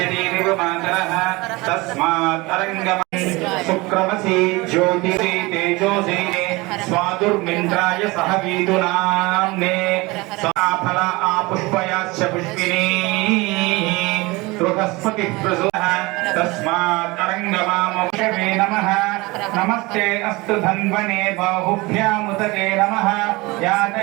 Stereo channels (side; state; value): left; quieter; 23.2 dB